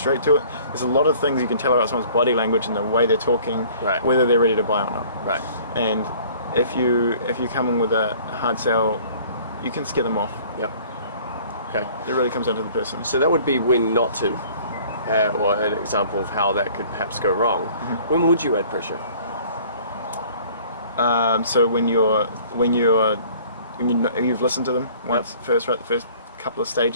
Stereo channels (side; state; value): both; inverted; correlation -0.52